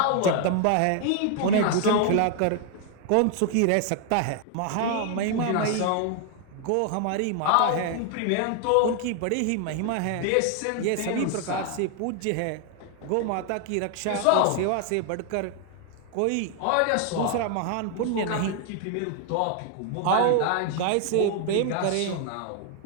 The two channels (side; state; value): both; different; correlation 0.00